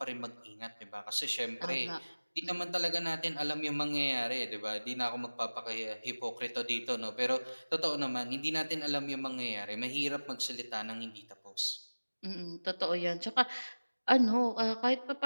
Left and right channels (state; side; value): inverted; both; correlation -1.00